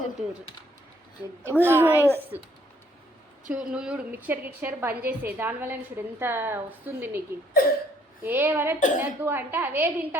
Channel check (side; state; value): both; normal; correlation 0.66